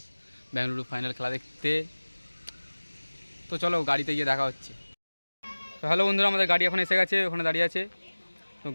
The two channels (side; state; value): both; inverted; correlation -1.00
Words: বেঙ্গালুরু ফাইনাল খেলা দেখতে। তো চলো গাড়িতে গিয়ে দেখা হচ্ছে। তো হ্যালো বন্ধুরা, আমাদের গাড়ি এখন এসে গেছে, ওখানে দাঁড়িয়ে আছে। তো